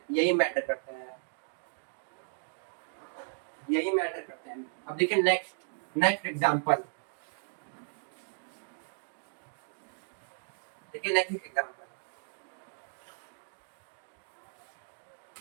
यही मैटर करता है, यही मैटर करता है। अब देखिए नेक्स्ट, नेक्स्ट एग्जांपल, देखिए नेक्स्ट एग्जांपल,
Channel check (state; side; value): silent; left; digital silence